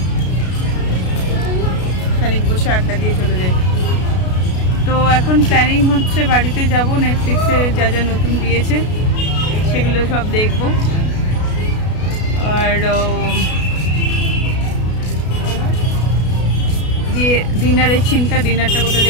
খানিক বসে আড্ডা দিয়ে চলে যাই। তো এখন প্ল্যানিং হচ্ছে বাড়িতে যাব, নেটফ্লিক্সে যা যা নতুন দিয়েছে সেগুলো সব দেখব। আর দিয়ে ডিনারের চিন্তা, ডিনারটা কোথা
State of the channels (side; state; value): right; late; 33 ms